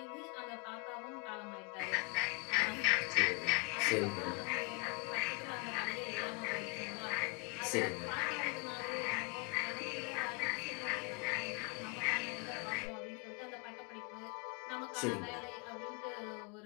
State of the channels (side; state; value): right; quieter; 32.0 dB